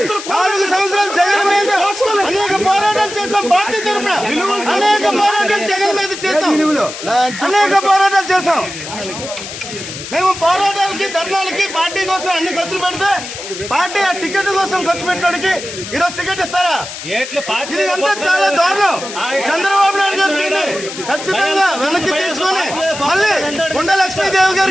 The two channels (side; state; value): left; noise; hiss, 10 dB below the sound